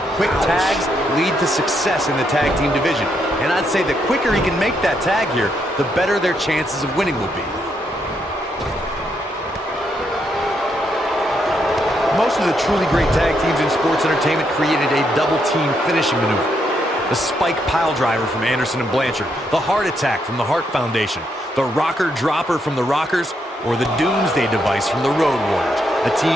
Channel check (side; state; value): both; normal; correlation 0.78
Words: quick tags lead to success in the tag team division. And I'd say the quicker he can make that tag here, the better their chances of winning will be. Most of the truly great tag teams in sports entertainment created a double team finishing maneuver. The spike pile driver from Anderson and Blanchard, the heart attack from the Hart Foundation, the rocker dropper from the Rockers, or the Doomsday device from the Road Warriors. A team